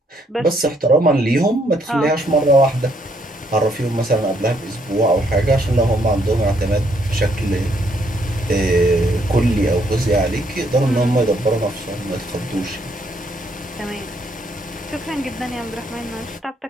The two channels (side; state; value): both; normal; correlation 0.70